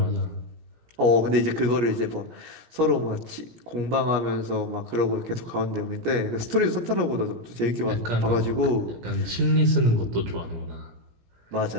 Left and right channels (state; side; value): late; left; 17 ms